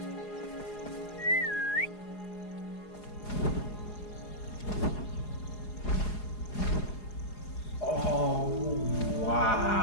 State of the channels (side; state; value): right; late; 4.8 ms